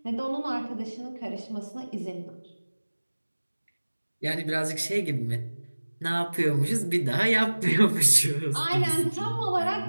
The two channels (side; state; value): both; inverted; correlation -1.00